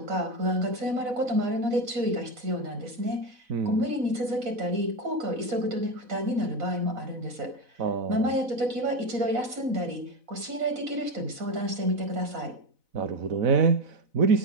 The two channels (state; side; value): late; left; 4.0 ms